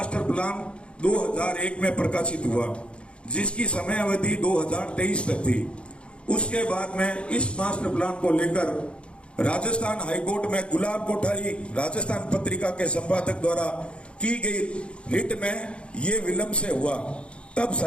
प्लान 2001 में प्रकाशित हुआ, जिसकी समय अवधि 2023 तक थी। उसके बाद में इस मास्टर प्लान को लेकर राजस्थान हाईकोर्ट में गुलाब कोठारी राजस्थान पत्रिका के संपादक द्वारा की गई रिट में ये विलंब से हुआ। तब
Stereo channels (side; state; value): right; late; 0.057 ms